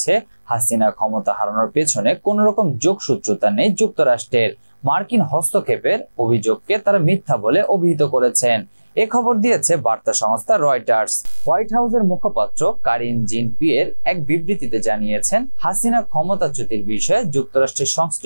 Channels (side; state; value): both; inverted; correlation -1.00